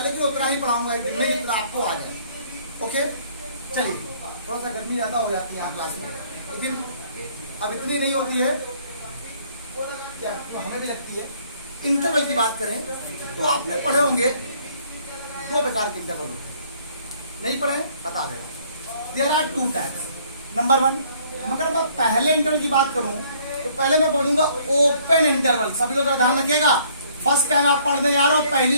लेकिन उतना ही पढ़ाऊंगा एक दिन में जितना आपको आ जाए। ओके चलिए, थोड़ा सा गर्मी ज्यादा हो जाती है यहाँ क्लास में, लेकिन अब इतनी नहीं होती है, क्या तो हमें भी लगती है। इंटरवल की बात करें तो आपने पढ़े होंगे दो प्रकार के इंटरवल होते हैं। नहीं पढ़े बता दे रहा हूं। There are two types. Number one, मगर मैं पहले इंटरवल की बात करूं तो पहले मैं बोलूंगा ओपन इंटरवल। सभी लोग ध्यान रखिएगा, फर्स्ट टाइम आप पढ़ने जा रहे हो,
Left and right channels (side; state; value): both; inverted; correlation -0.61